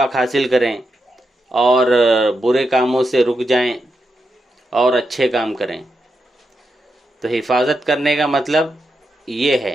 حاصل کریں اور برے کاموں سے رک جائیں اور اچھے کام کریں۔ تو حفاظت کرنے کا مطلب یہ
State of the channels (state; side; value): normal; both; correlation 0.85